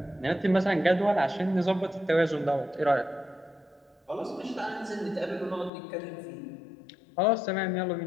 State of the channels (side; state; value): right; drops out; at 5.7 s